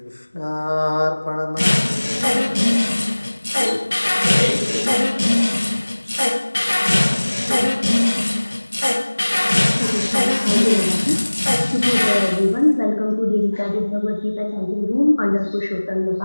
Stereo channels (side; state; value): both; inverted; correlation -1.00